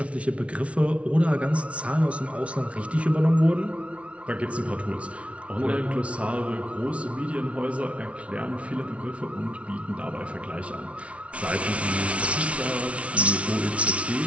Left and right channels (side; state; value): left; late; 0.063 ms